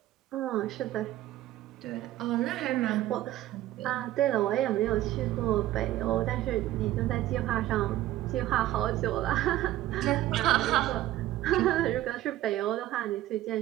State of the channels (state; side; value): quieter; left; 14.5 dB